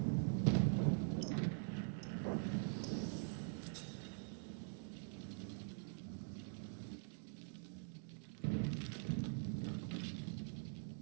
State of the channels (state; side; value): silent; left; digital silence